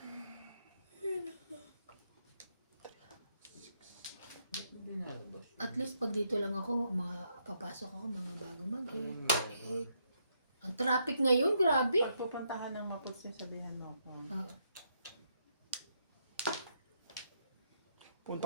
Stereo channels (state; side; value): inverted; both; correlation -0.76